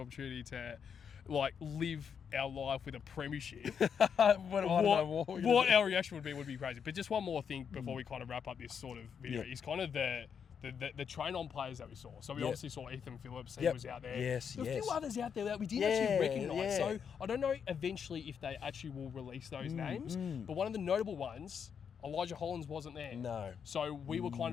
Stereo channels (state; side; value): quieter; right; 7.2 dB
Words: to live our life with a premiership, what our reaction would be crazy. But just one more thing before we kind of wrap up this sort of video is kind of the train-on players that we saw. So we obviously saw Ethan Phillips, he was out there. Yes, There were a few others out there that we didn't actually recognise. So I don't know eventually if they actually will release those names. But one of the notable ones, Elijah Hollins wasn't there. No. So we were kind